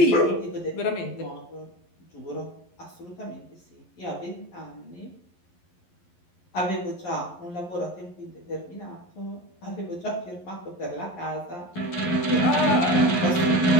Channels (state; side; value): late; right; 11 ms